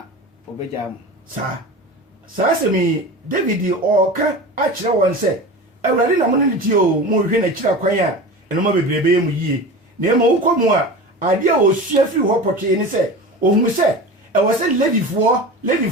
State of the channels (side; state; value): both; normal; correlation 0.31